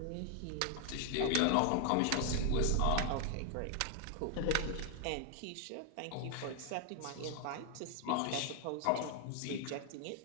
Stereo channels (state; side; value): different; both; correlation 0.00